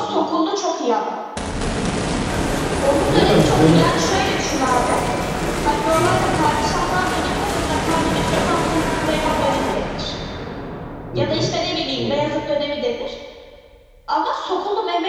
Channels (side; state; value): both; identical; correlation 1.00